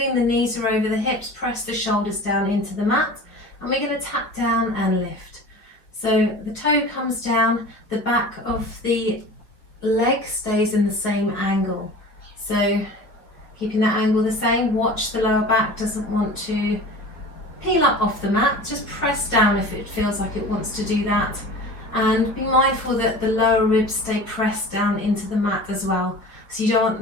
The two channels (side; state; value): right; late; 4.8 ms